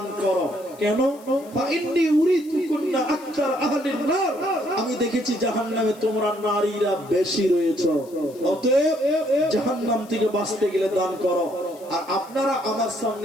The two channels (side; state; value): left; noise; hiss, 24 dB below the sound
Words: করো। কেন? ফা ইন্নী উরিতুকুন্না আকতার আহলিন নার, আমি দেখেছি জাহান্নামে তোমরা নারীরা বেশি রয়েছে, অতএব জাহান্নাম থেকে বাঁচতে গেলে দান করো। আর আপনারা আমার